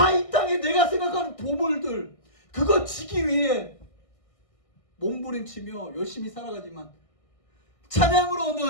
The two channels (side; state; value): right; late; 1.6 ms